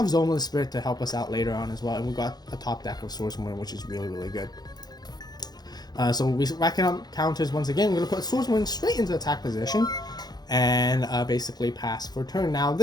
Zoma the Spirit to help us out later on as well. And we got a top deck of Swordswoman, which is really good. So we racking up counters once again. We're going to put Swordswoman straight into attack position and basically pass for turn. Now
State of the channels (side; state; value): right; late; 0.19 ms